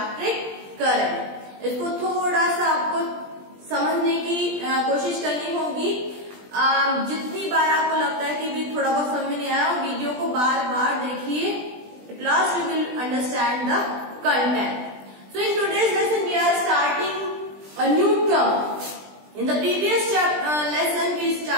current. इसको थोड़ा सा आपको समझने की कोशिश करनी होगी। जितनी बार आपको लगता है कि भी थोड़ा बहुत समझ में नहीं आया, वीडियो को बार बार देखिए। At last you will understand the content. So in today's lesson we are starting a new term. In the previous lesson we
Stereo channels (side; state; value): left; late; 20 ms